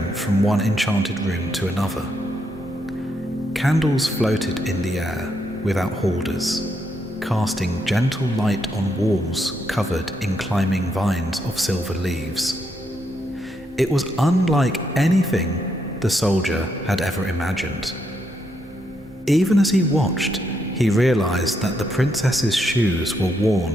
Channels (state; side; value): normal; both; correlation 0.78